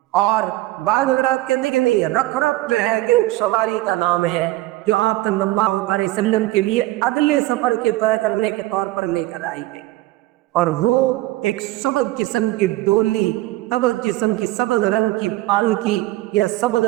اور بعض حضرات کہتے ہیں کہ نہیں، رفرف جو ہے کہ ایک سواری کا نام ہے جو آپ صلی اللہ علیہ وسلم کے لیے اگلے سفر کے طے کرنے کے طور پر لے کر آئی گئی، اور وہ ایک سبز قسم کی ڈولی، سبز قسم کی سبز رنگ کی پالکی یا سبز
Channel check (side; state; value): left; quieter; 18.0 dB